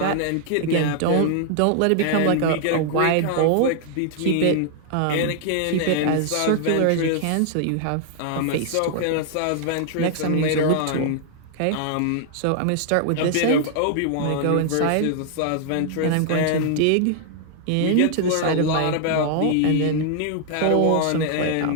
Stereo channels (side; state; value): both; different; correlation 0.00